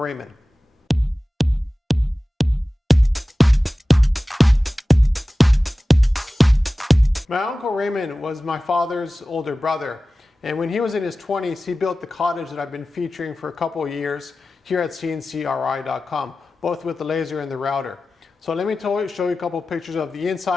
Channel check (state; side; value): normal; both; correlation 0.96